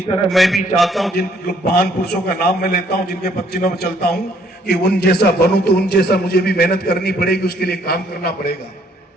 तरह मैं भी चाहता हूं, जिन महान पुरुषों का नाम मैं लेता हूं, जिनके पदचिन्हों में चलता हूं, कि उन जैसा बनूं तो उन जैसा मुझे भी मेहनत करनी पड़ेगी, उसके लिए काम करना पड़ेगा,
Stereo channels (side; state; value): both; normal; correlation 0.65